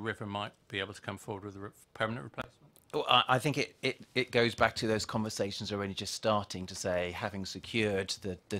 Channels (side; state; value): both; identical; correlation 1.00